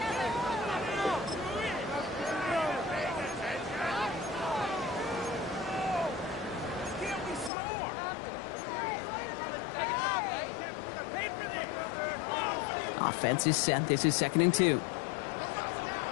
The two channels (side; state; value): right; drops out; at 7.5 s